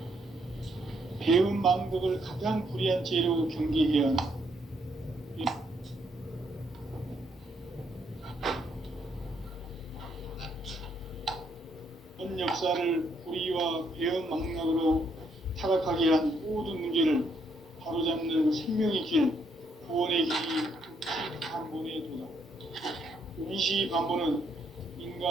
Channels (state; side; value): normal; both; correlation 0.73